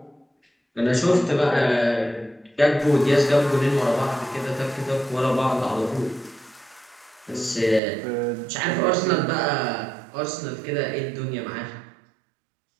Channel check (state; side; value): drops out; left; at 7.8 s